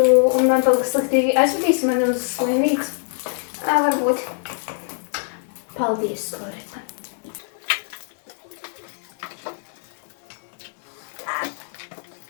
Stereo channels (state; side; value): silent; right; digital silence